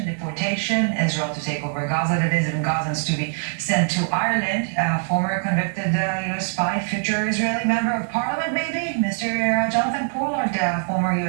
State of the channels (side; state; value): left; silent; 64 dB below the other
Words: deportation, Israel to take over Gaza, that is, and Gazans to be sent to Ireland. Former convicted U.S. spy, future Israeli member of parliament, maybe, Mr. Jonathan Pollard, former